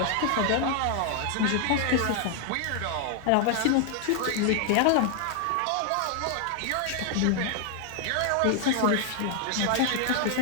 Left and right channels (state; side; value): different; both; correlation 0.00